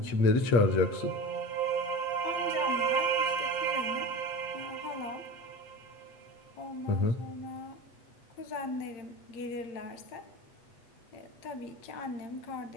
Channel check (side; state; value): right; late; 8.1 ms